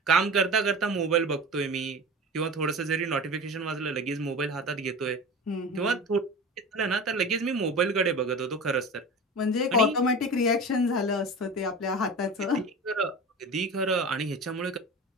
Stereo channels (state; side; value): normal; both; correlation 0.33